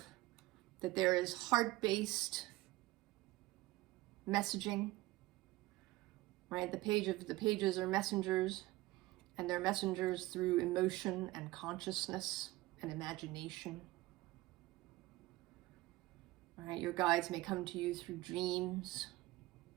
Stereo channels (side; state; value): left; quieter; 18.9 dB